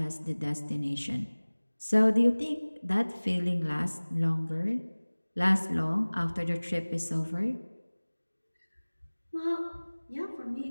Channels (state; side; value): inverted; both; correlation -1.00